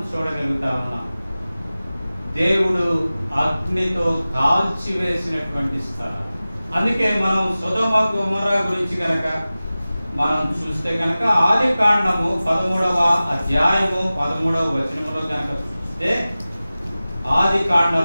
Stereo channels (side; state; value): both; inverted; correlation -0.96